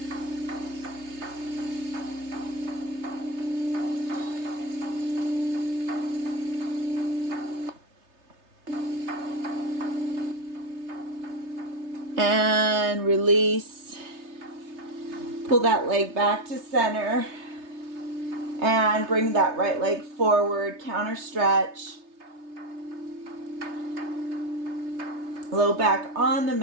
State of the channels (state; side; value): late; left; 3.3 ms